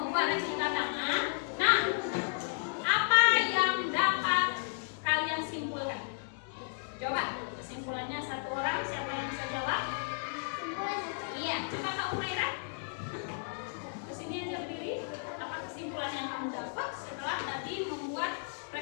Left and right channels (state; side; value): silent; right; digital silence